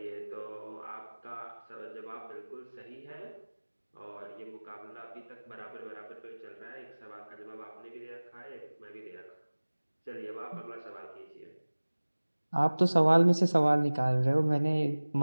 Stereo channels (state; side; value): inverted; both; correlation -1.00